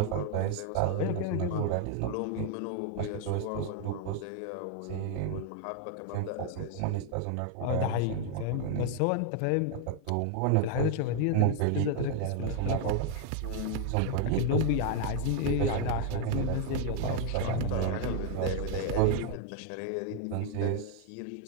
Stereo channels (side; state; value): both; different; correlation 0.00